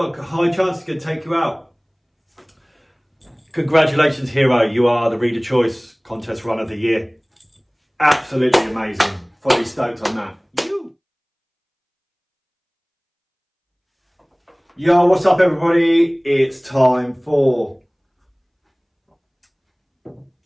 a high chance he could take you out. Congratulations, Hiro. You are the Reader Choice Contest Run of the Year. Absolutely amazing. Fully stoked on that. Yo, what's up, everybody? It's time for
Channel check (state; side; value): identical; both; correlation 1.00